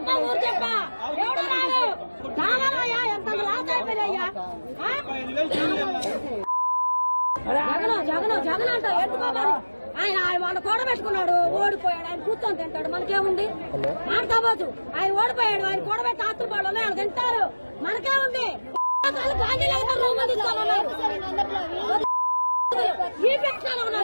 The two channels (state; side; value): inverted; both; correlation -1.00